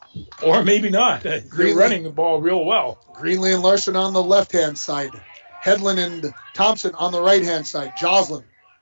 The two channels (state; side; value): inverted; both; correlation -1.00